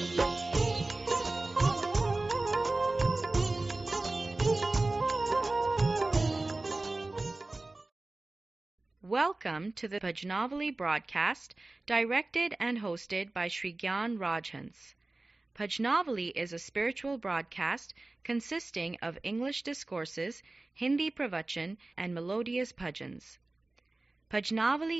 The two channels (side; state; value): left; quieter; 3.0 dB